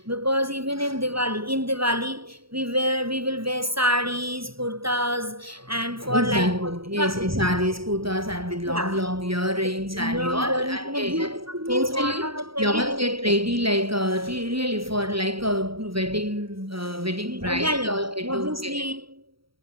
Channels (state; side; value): late; left; 0.75 ms